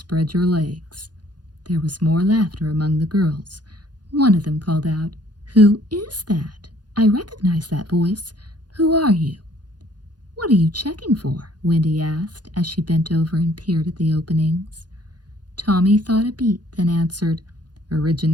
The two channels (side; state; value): left; late; 0.70 ms